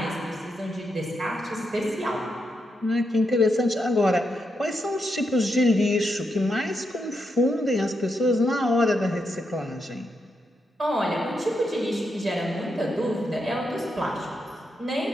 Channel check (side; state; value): both; normal; correlation 0.83